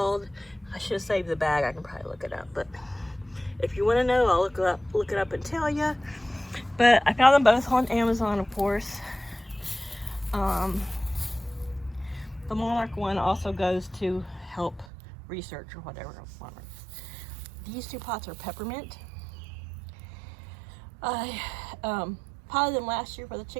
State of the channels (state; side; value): drops out; left; at 14.9 s